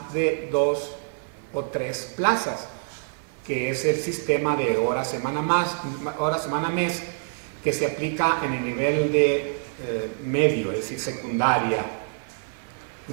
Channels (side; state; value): left; silent; digital silence